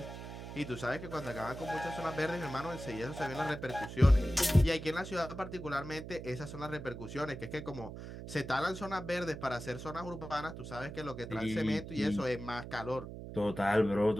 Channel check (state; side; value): noise; right; hum, 10 dB below the sound